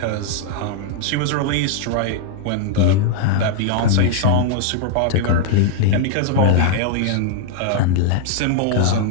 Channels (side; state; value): both; different; correlation -0.01